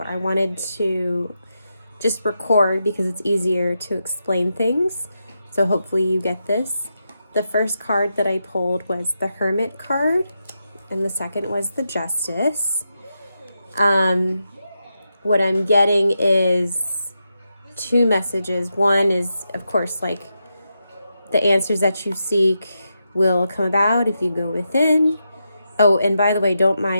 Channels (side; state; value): both; inverted; correlation -0.86